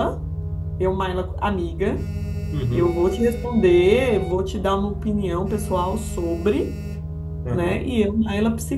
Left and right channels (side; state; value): both; identical; correlation 1.00